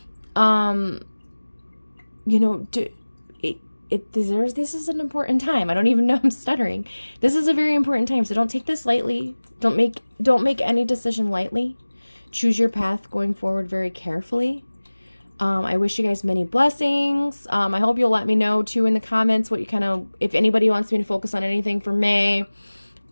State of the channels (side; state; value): both; inverted; correlation -1.00